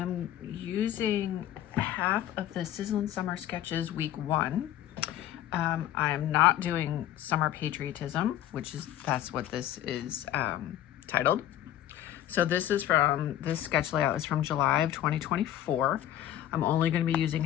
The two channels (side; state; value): right; quieter; 12.3 dB